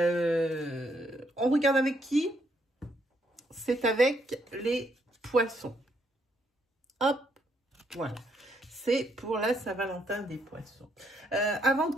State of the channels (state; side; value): normal; both; correlation 0.74